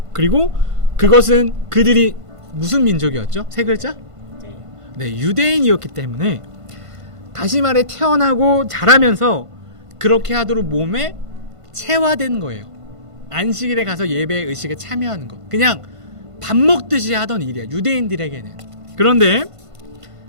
그리고 그것은 그들이 무슨 민족이었죠? 세 글자? 네, 유대인이었기 때문에 다시 말해 태어나고 자라면서 그렇게 하도록 몸에 체화된 거예요. 안식일에 가서 예배 의식에 참여하는 것. 그냥 밥 먹듯이 하던 일이야, 유대인들에게는. 그런데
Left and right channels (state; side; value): late; left; 1.5 ms